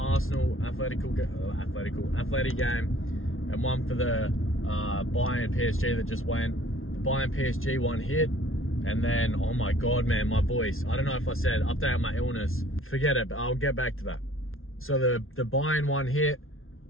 athletic game, and one for the Bayern PSG that just went. The Bayern PSG one hit, and then, oh my God, man, my voice. I don't know if I said update on my illness. Forget it, but I'll get back to that. So the Bayern one hit,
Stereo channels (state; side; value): late; right; 0.61 ms